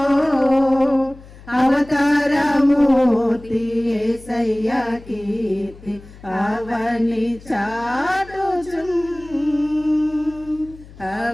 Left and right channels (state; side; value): noise; left; hum, 20 dB below the sound